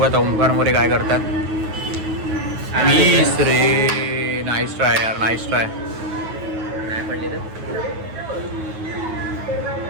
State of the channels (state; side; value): late; left; 9.3 ms